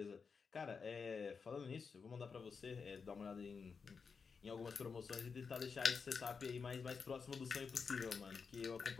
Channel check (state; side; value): quieter; right; 5.5 dB